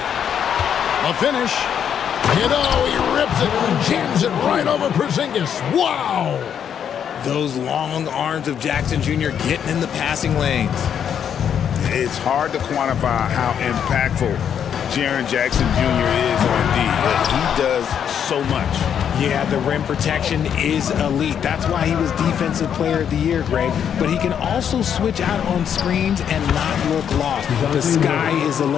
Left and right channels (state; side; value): quieter; right; 8.5 dB